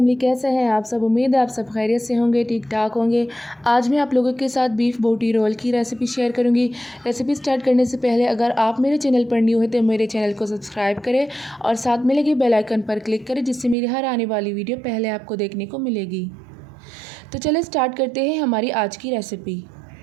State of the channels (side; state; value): left; drops out; at 13.8 s